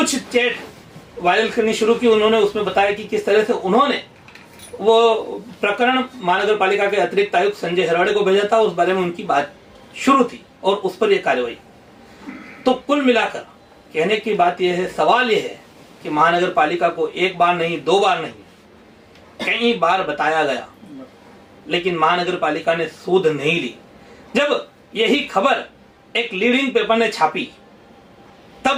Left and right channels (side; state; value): both; identical; correlation 1.00